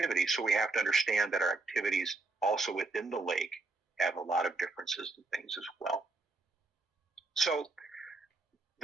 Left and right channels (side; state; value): left; quieter; 3.5 dB